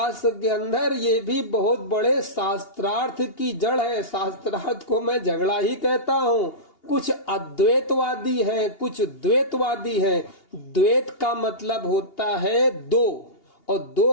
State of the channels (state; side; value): late; right; 2.8 ms